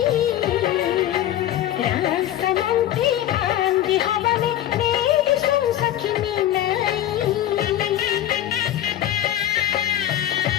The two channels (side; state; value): right; quieter; 12.4 dB